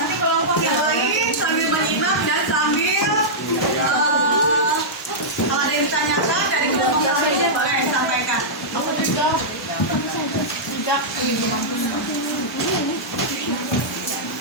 kelompok yang lain sambil menyimak dan sambil kalau ada yang ditanyakan dari kelompok lain boleh sampaikan.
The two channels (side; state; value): both; normal; correlation -0.11